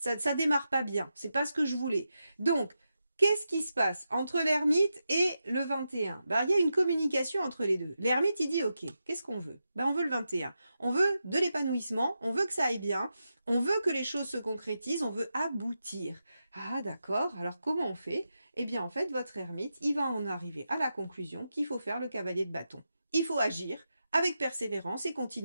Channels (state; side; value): inverted; both; correlation -0.88